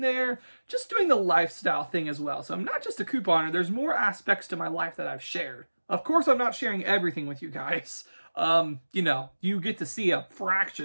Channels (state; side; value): inverted; both; correlation -1.00